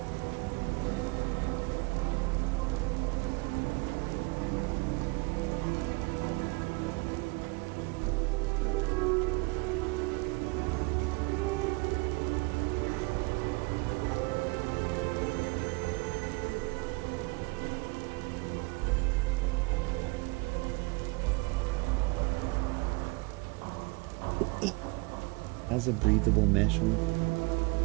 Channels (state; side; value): quieter; left; 28.1 dB